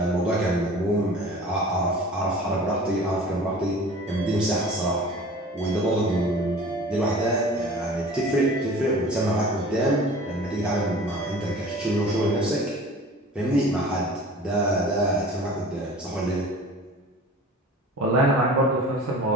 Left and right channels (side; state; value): both; normal; correlation 0.42